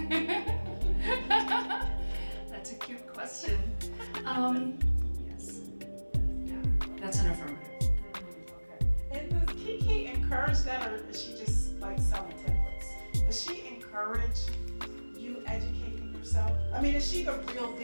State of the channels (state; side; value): inverted; both; correlation -1.00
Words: Yes. Yeah, that's an affirmative. Okay. And does Kiki encourage that, or is she just like selling templates? Does she encourage you educating yourself? I mean, is she the real